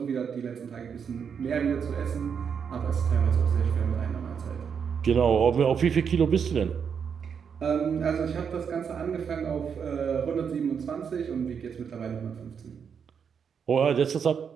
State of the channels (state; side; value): quieter; left; 6.9 dB